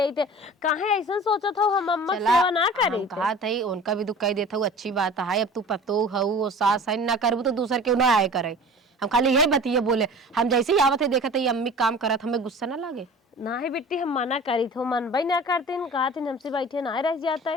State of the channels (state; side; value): normal; both; correlation 0.40